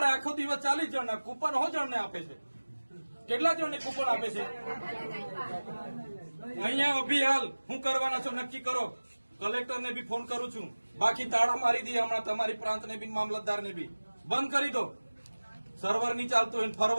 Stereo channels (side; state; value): both; inverted; correlation -1.00